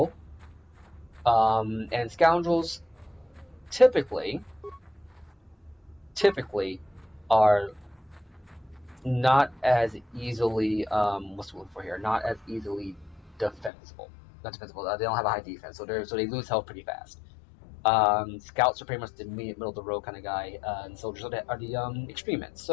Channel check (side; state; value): right; drops out; at 13.7 s